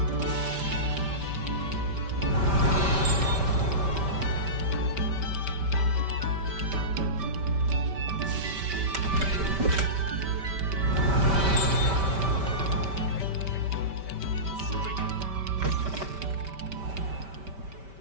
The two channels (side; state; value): left; late; 5.1 ms